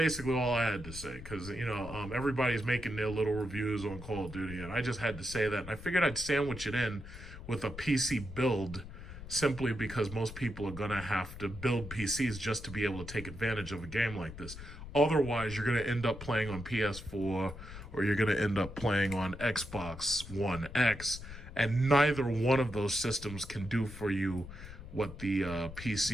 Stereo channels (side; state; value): left; noise; rumble, 12 dB below the sound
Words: all I had to say, because, everybody's making their little reviews on Call of Duty, and I just had to say that. And I figured I'd sandwich it in with a PC build, simply because most people are going to have to build PCs just to be able to take advantage of a game like this. Otherwise, you're going to end up playing on PS4 or you're going to end up playing on Xbox One X, and neither one of those systems can do for you what the